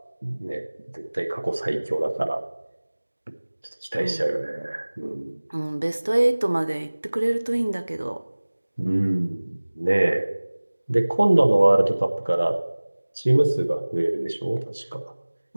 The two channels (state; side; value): inverted; both; correlation -1.00